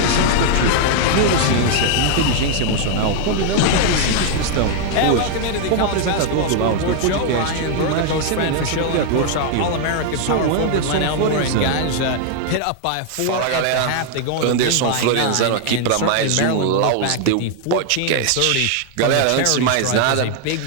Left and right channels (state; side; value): different; both; correlation 0.00